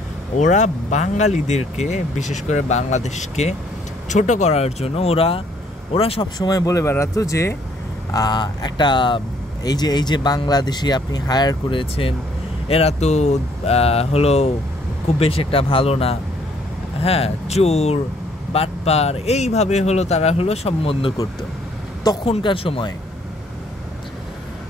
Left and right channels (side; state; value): both; normal; correlation 0.65